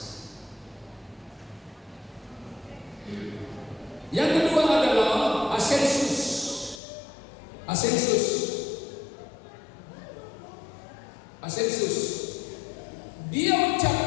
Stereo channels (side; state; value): right; drops out; at 6.8 s